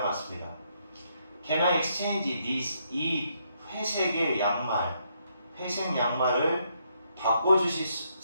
맞습니다. Can I exchange this? 이 회색 양말을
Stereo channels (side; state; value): both; inverted; correlation -0.75